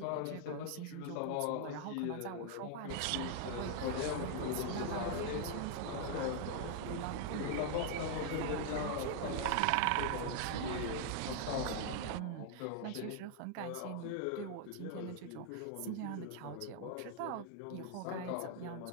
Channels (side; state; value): both; different; correlation 0.00